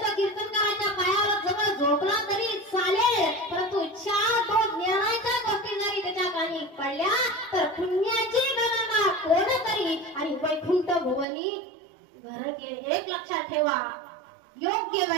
तो कीर्तनकाराच्या पायावर जवळ झोपला तरी चालेल, परंतु 4 ज्ञानाच्या गोष्टी जरी त्याच्या कानी पडल्या तर पुण्याची गणना कोण करी आणि वैकुंठ भुवनी घर गेले. एक लक्षात ठेवा, योग्य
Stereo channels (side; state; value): left; drops out; at 11.2 s